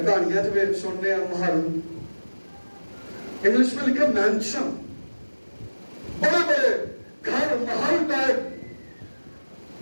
جو سننے ہیں محل, انگلش میں لکھا مینشن, بڑے بڑے گھر محل ٹائپ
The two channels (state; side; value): inverted; both; correlation -1.00